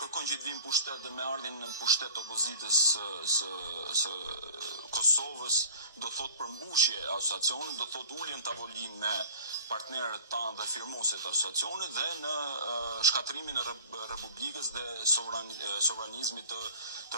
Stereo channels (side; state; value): both; inverted; correlation -0.43